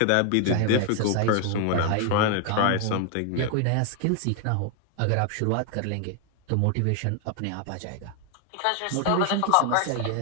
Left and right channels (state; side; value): different; both; correlation 0.00